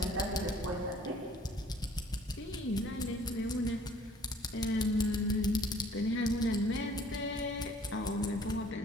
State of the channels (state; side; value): normal; both; correlation 0.56